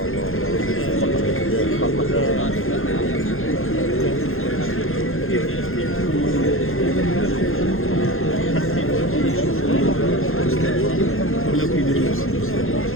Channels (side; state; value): right; late; 0.60 ms